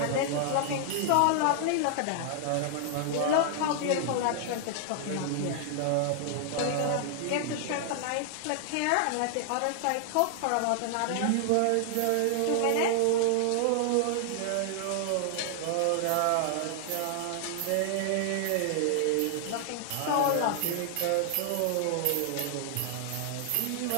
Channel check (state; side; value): different; both; correlation -0.01